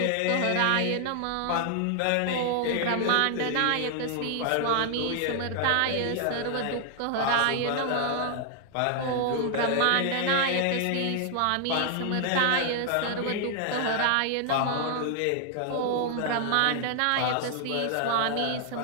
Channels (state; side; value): different; both; correlation 0.00